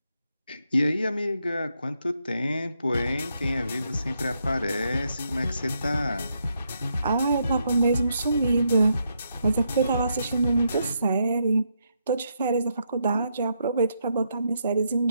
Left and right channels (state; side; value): inverted; both; correlation -0.79